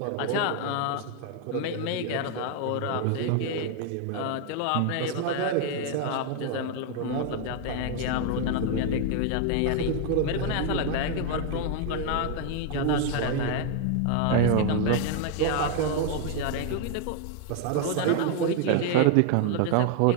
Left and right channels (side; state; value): both; different; correlation 0.00